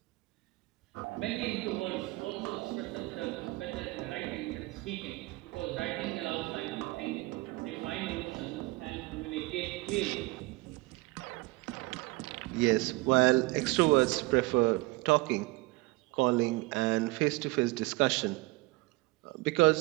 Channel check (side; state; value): left; quieter; 21.9 dB